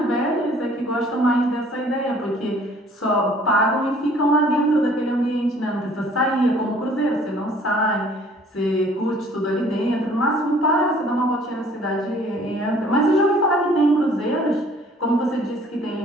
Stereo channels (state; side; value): normal; both; correlation 0.56